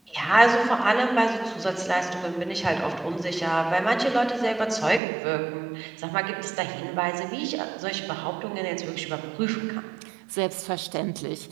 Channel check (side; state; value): left; drops out; at 5.0 s